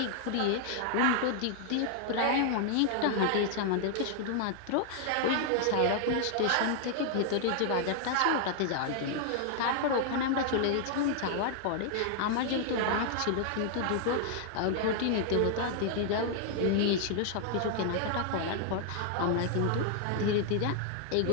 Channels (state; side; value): different; both; correlation -0.01